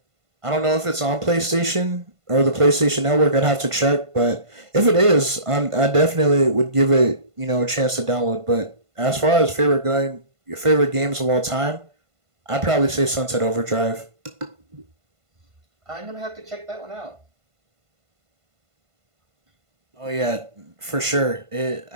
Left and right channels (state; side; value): late; left; 1.5 ms